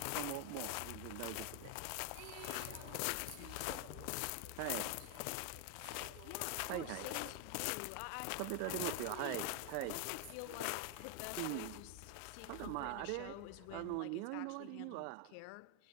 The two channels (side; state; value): both; different; correlation 0.01